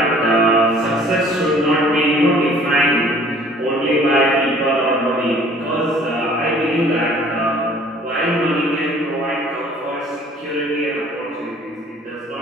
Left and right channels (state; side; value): normal; both; correlation 0.53